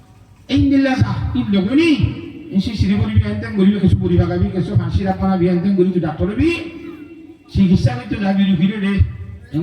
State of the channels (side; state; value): both; identical; correlation 1.00